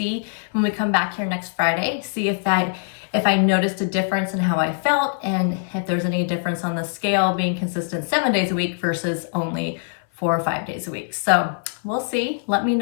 when we come back here next Friday, see if I noticed a difference in how I felt, and if there's any difference on the scale being consistent 7 days a week versus only 4 or 5 days a week. So we'll see. Let me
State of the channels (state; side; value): silent; right; 58 dB below the other